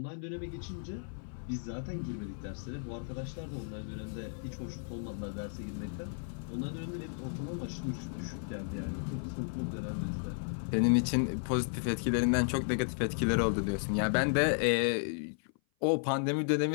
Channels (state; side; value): silent; right; 55 dB below the other